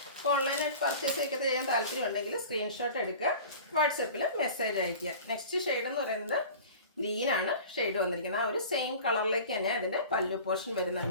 അപ്പോൾ ഓൺലൈനായിട്ട് പർച്ചേസ് ഒക്കെ ചെയ്യാൻ താല്പര്യം ഉണ്ടെങ്കിൽ സ്ക്രീൻഷോട്ട് എടുക്കുക, വാട്സപ്പിൽ മെസ്സേജ് അയയ്ക്കുക. നെക്സ്റ്റ് ഷെയ്ഡ് എന്ന് പറയുന്നത് ഗ്രീനാണ് ഷെയ്ഡ് വന്നിരിക്കുന്നത്. ആ ഒരു സെയിം കളറിലേക്ക് തന്നെ അതിൻ്റെ പല്ലു പോർഷൻ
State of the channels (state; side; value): inverted; both; correlation -0.40